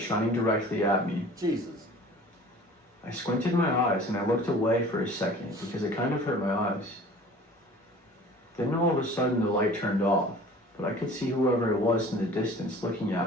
shining directly at me. Jesus. I squinted my eyes and I looked away for a second because it kind of hurt my eyes. Then all of a sudden the light turned off, but I could see whoever it was in the distance looking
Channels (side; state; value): both; normal; correlation 0.45